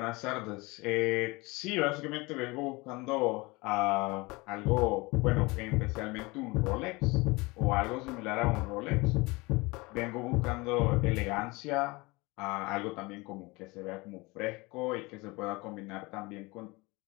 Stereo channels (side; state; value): right; quieter; 24.3 dB